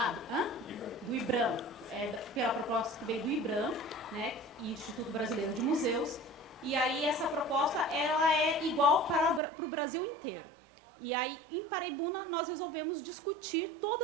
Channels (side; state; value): left; drops out; at 9.4 s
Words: Do IBRAM. Pela proposta que veio do IBRAM, né? Instituto Brasileiro de Museus. E aí essa proposta ela é igual para o Brasil inteiro. E aí em Paraibuna nós resolvemos discutir